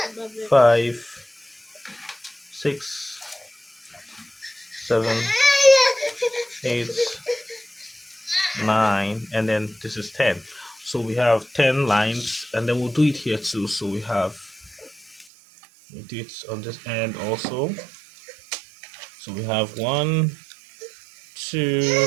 5, 6, 7, 8, 9, and then this is 10. So we have 10 lines, and then we'll do it here too. So we do it on this end also. So we have 1,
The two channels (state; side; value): drops out; left; at 15.2 s